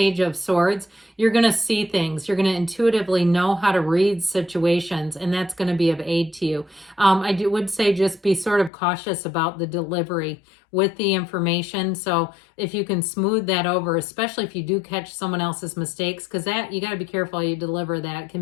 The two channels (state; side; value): drops out; right; at 8.7 s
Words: of Swords, you're going to see things. You're going to intuitively know how to read situations, and that's going to be of aid to you. I would say just be sort of cautious about the delivery with the information. So if you can smooth that over, especially if you do catch someone else's mistakes, because that you got to be careful how you deliver that. It